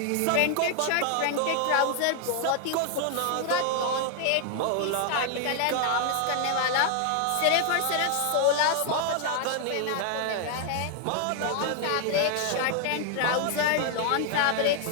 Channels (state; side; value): different; both; correlation 0.00